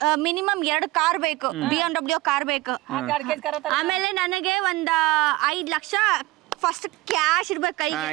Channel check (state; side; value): quieter; left; 19.4 dB